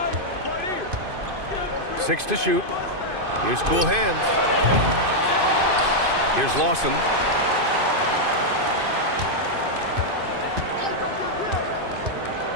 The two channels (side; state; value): left; late; 2.5 ms